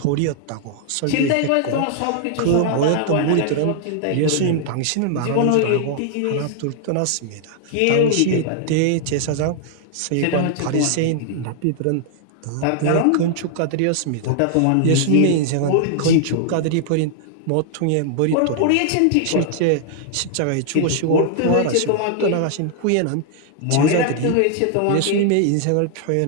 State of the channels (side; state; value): both; different; correlation -0.01